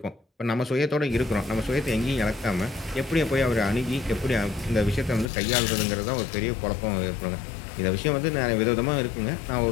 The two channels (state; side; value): drops out; right; at 5.3 s